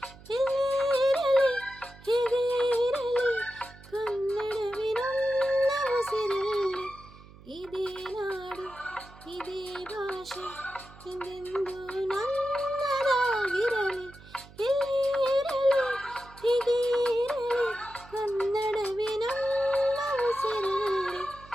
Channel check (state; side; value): noise; right; hum, 21 dB below the sound